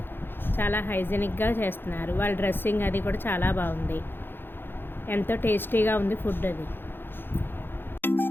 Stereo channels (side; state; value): right; late; 0.10 ms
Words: చాలా హైజెనిక్గా చేస్తున్నారు. వాళ్ళ డ్రెస్సింగ్ అది కూడా చాలా బాగుంది. ఎంతో టేస్టీగా ఉంది ఫుడ్ అది.